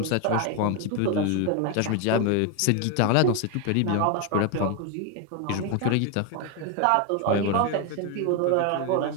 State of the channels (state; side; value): different; both; correlation 0.01